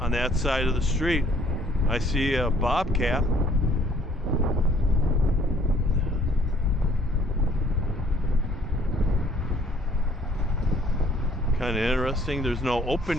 that side of the street. I see a bobcat. Kind of interesting. There's no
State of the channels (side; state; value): both; normal; correlation 0.60